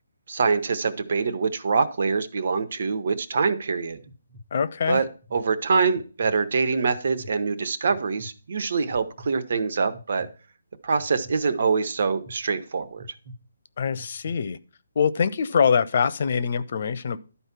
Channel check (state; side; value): inverted; both; correlation -0.79